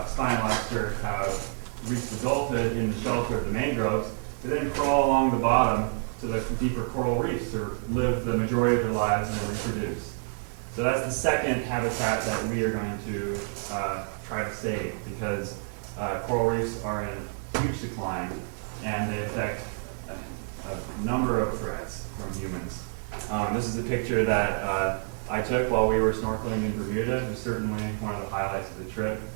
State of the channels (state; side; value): silent; left; 59 dB below the other